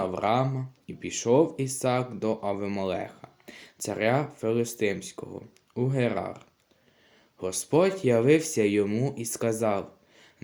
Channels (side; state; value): both; identical; correlation 1.00